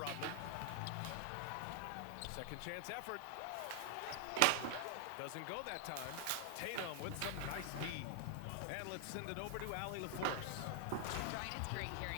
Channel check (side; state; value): both; different; correlation 0.00